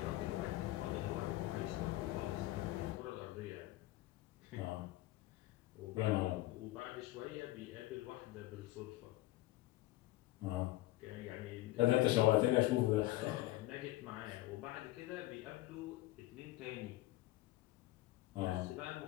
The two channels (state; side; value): quieter; right; 17.2 dB